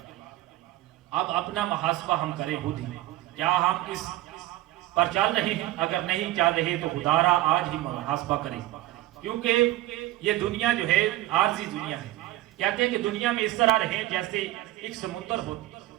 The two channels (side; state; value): left; quieter; 16.1 dB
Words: اب اپنا محاسبہ ہم کریں خود ہی، کیا ہم اس پر چل رہے ہیں؟ اگر نہیں چل رہے تو خدارا آج ہی محاسبہ کریں، کیونکہ یہ دنیا جو ہے عارضی دنیا ہے۔ کہتے ہیں کہ دنیا میں اس طرح رہیں جیسے ایک سمندر ہوتی